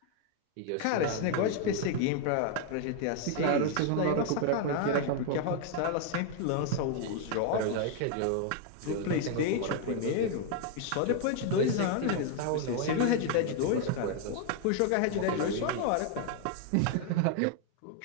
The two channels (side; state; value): both; different; correlation 0.00